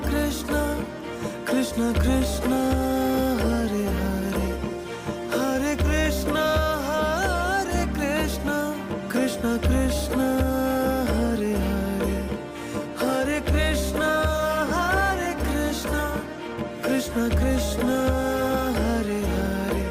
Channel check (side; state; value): both; identical; correlation 1.00